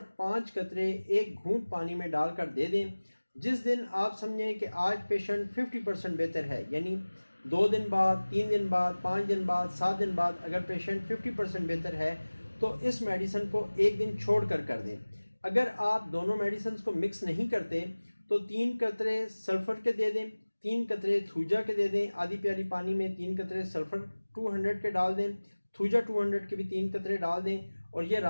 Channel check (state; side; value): inverted; both; correlation -1.00